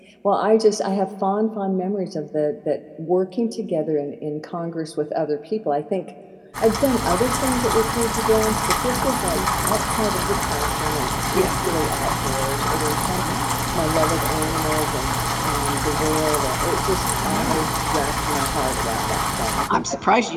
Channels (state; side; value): identical; both; correlation 1.00